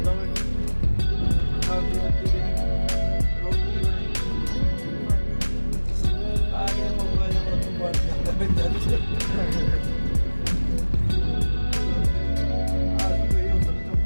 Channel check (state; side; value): inverted; both; correlation -1.00